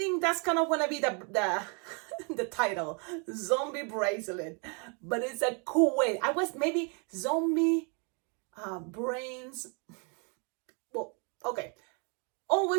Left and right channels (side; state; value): left; quieter; 36.5 dB